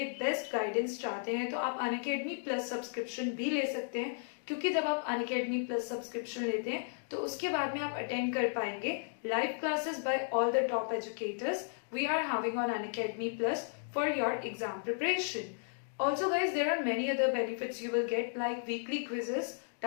बेस्ट गाइडेंस चाहते हैं तो आप अनअकैडमी प्लस सब्सक्रिप्शन भी ले सकते हैं, क्योंकि जब आप अनअकैडमी प्लस सब्सक्रिप्शन लेते हैं तो उसके बाद में आप अटेंड कर पाएंगे live classes by all the top educators we are having on Unacademy Plus for your exam preparation. Also guys, there are many other benefits you will get like weekly quizzes,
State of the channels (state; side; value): silent; right; digital silence